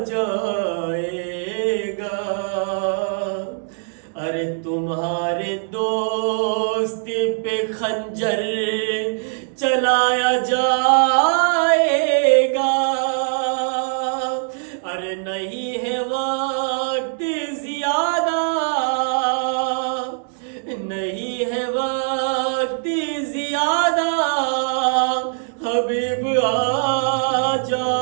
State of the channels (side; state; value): left; silent; digital silence